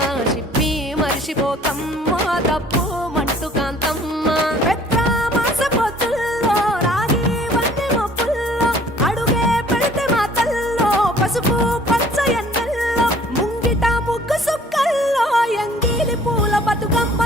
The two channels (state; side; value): normal; both; correlation 0.54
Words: షిప్పి మరిషిపోకమ్మో తప్పు మంటు కాంతమ్మ పెద్ద మాస పొత్తుల్లో రాగి వంటి మొప్పుల్లో అడుగే పెడితే మాతల్లో పసుపు పచ్చ ఎన్నెల్లో ముంగిట ముగ్గు సుక్కల్లో ఎంగిలి పూల